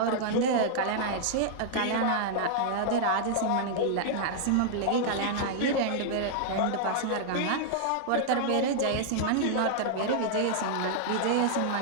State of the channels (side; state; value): both; different; correlation -0.01